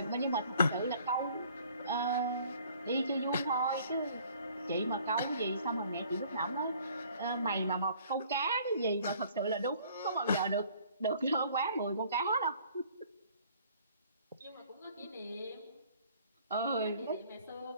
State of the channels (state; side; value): inverted; both; correlation -0.56